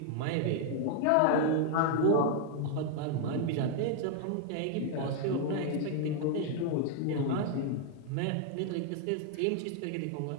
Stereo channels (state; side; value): different; both; correlation 0.00